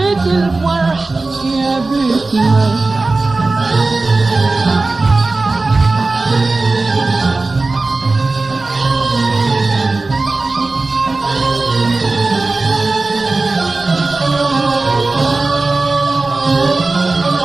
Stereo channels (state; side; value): quieter; left; 3.4 dB